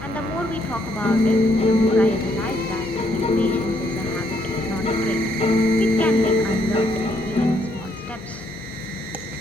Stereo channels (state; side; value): normal; both; correlation 0.72